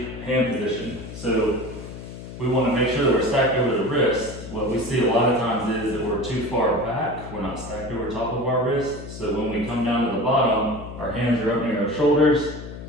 hand position. So we want to make sure that we're stacked over the wrist. What we see a lot of times is that we're too far back. We're not stacked over top of our wrist. So when we come down to the bottom, our hands are up near our shoulders.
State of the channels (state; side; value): noise; left; hum, 12 dB below the sound